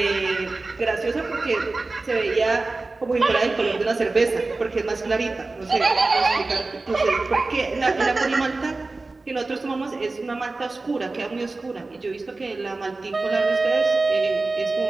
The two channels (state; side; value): quieter; left; 3.4 dB